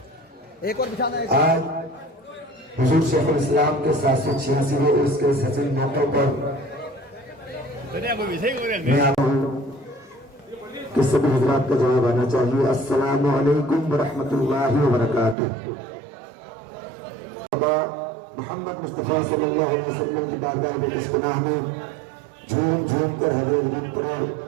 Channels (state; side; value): drops out; left; at 15.4 s